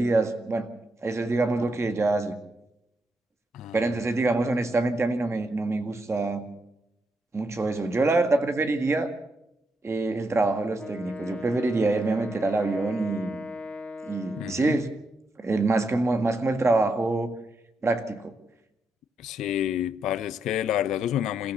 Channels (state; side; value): normal; both; correlation 0.81